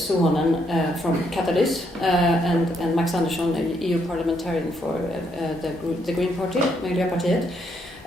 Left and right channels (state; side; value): normal; both; correlation 0.74